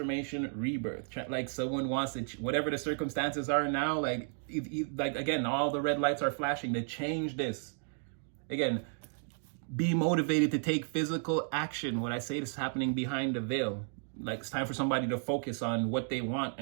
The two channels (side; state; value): left; silent; 56 dB below the other